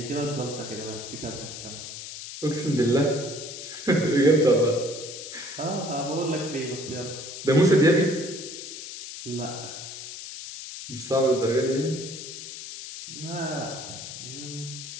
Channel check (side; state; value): left; noise; hiss, 10 dB below the sound